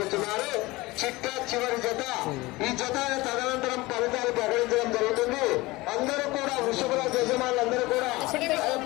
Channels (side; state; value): right; quieter; 21.1 dB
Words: చిట్టా చివరి జత ఈ జత తదనంతరం ఫలితాలు ప్రకటించడం జరుగుతుంది. అందరూ కూడా వృషభరాజు యజమానులందరూ కూడా ఆ